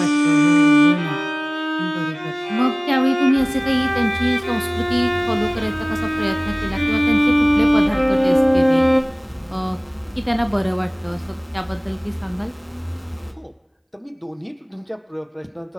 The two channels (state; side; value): identical; both; correlation 1.00